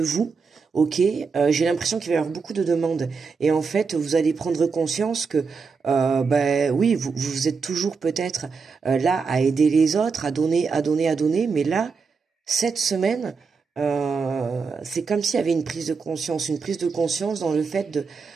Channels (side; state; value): left; quieter; 5.1 dB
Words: Ok, j'ai l'impression qu'il va y avoir beaucoup de demandes. Et en fait, vous allez prendre conscience que, oui, vous êtes toujours peut-être là à aider les autres, à donner, mais là, cette semaine, c'est comme s'il y avait une prise de conscience dans le fait